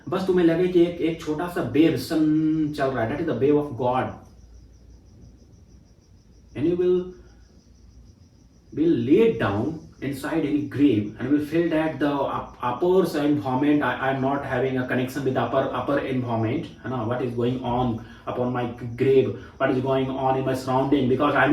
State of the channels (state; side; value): identical; both; correlation 1.00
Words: बस तुम्हें लगे कि एक छोटा सा वेव सन चल रहा है, that is the wave of God. And you will lay down inside any grave and will feel that the upper environment, I am not having a connection with the upper environment, what is going on upon my grave, what is going on in my surrounding, because I